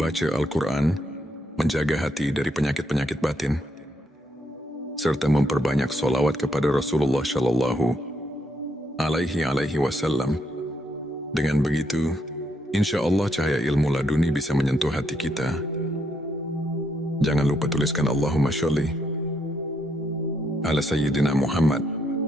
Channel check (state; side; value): normal; both; correlation 0.76